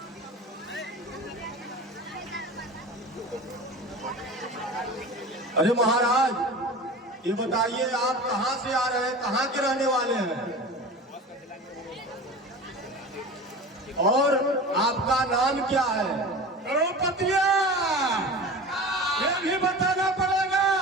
अरे महाराज ये बताइए आप कहाँ से आ रहे हैं, कहाँ के रहने वाले हैं और आपका नाम क्या है? करोड़पतिया ये भी बताना पड़ेगा।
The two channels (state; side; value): normal; both; correlation 0.34